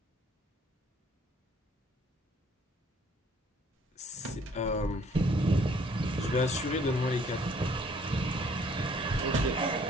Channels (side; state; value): both; normal; correlation 0.61